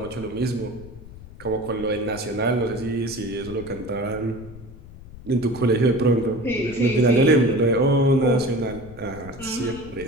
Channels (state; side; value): noise; left; rumble, 17 dB below the sound